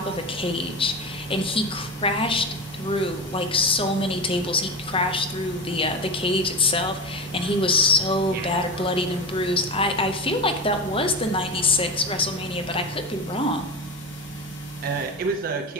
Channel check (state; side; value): normal; both; correlation 0.23